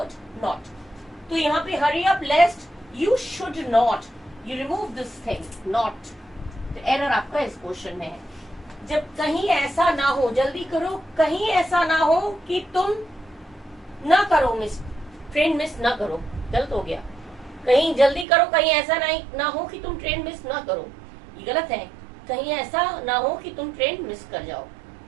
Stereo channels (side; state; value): left; drops out; at 18.2 s